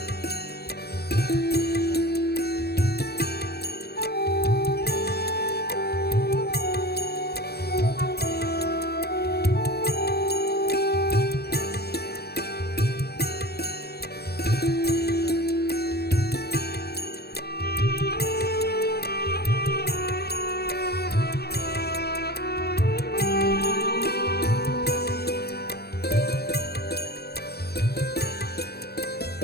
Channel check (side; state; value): right; late; 0.47 ms